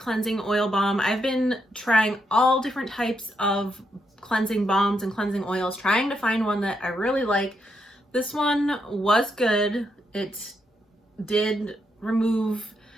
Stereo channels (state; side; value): normal; both; correlation 0.80